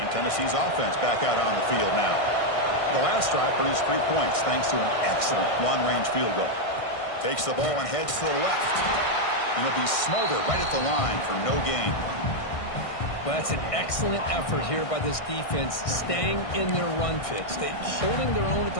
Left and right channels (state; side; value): late; right; 1.6 ms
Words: Tennessee's offense back out on the field now. The last drive produced 3 points thanks to an excellent long-range field goal. Takes the ball and heads to the left. And he'll be smothered right at the line for no gain. Well, that's an excellent effort here by this defense, staying in their run fit, holding their own at